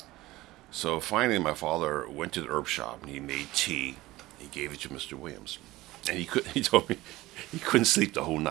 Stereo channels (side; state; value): left; quieter; 18.2 dB